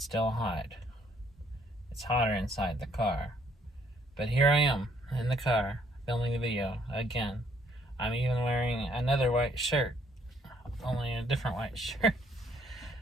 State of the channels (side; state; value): both; normal; correlation 0.66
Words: still hot. It's hotter inside the car. But here I am, in the car, filming the video, again. I'm even wearing another white shirt. Only a different white shirt.